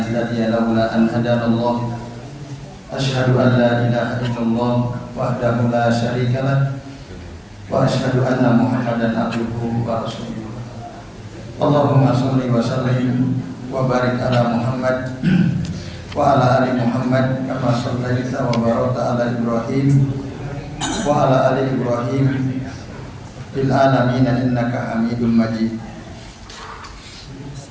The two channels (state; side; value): identical; both; correlation 1.00